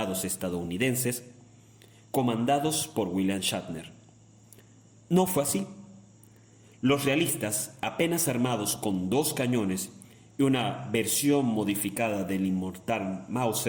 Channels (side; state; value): both; identical; correlation 1.00